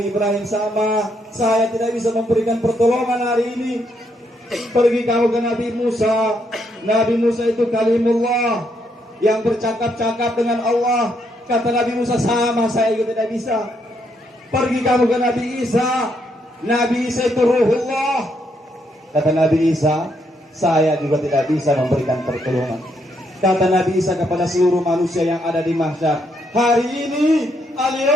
Ibrahim, sama, saya tidak bisa memberikan pertolongan hari ini. Pergi kamu ke Nabi Musa. Nabi Musa itu kalimullah, yang bercakap-cakap dengan Allah. Kata Nabi Musa, sama, saya juga tidak bisa. Pergi kamu ke Nabi Isa. Nabi Isa itu ruhullah. Kata Nabi Isa, saya juga tidak bisa memberikan pertolongan. Kata Nabi Isa kepada seluruh manusia yang ada di mahsyar, hari ini,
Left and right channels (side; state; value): both; normal; correlation 0.75